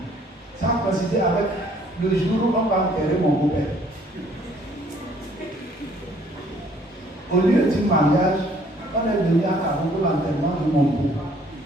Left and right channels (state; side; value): normal; both; correlation 0.60